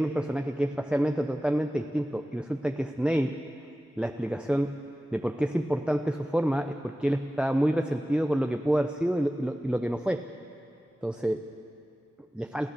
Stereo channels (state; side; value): normal; both; correlation 0.95